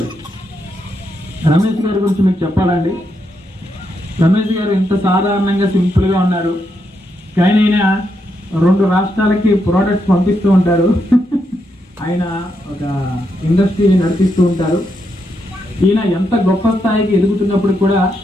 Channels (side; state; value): both; normal; correlation 0.81